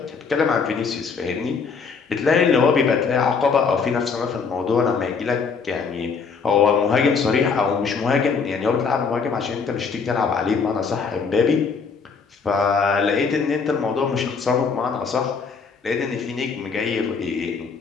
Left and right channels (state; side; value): quieter; right; 5.4 dB